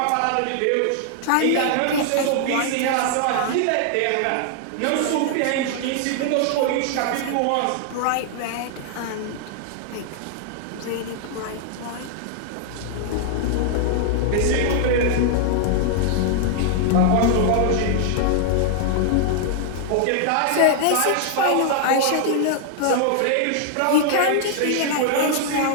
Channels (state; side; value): different; both; correlation 0.00